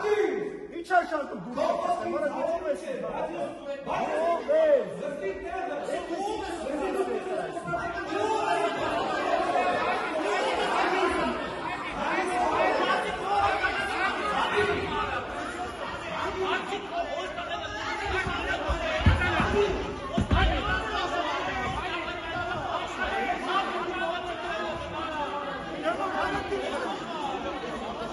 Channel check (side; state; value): both; identical; correlation 1.00